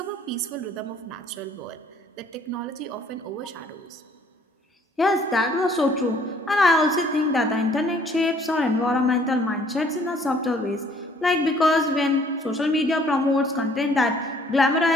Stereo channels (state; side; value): normal; both; correlation 0.60